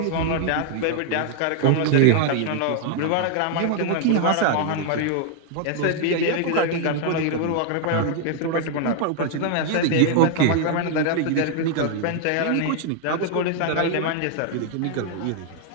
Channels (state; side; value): different; both; correlation 0.00